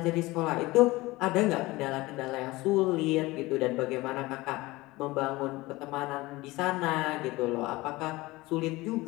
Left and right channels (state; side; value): quieter; right; 20.5 dB